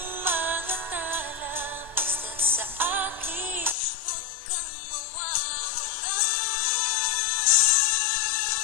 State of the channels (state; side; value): drops out; right; at 3.8 s